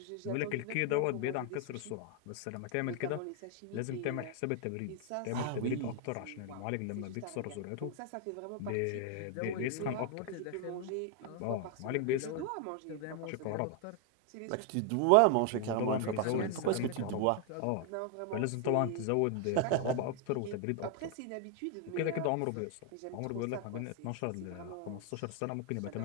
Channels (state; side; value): different; both; correlation 0.00